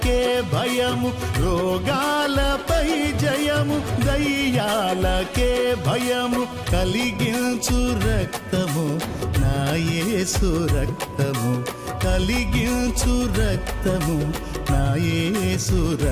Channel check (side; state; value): both; identical; correlation 1.00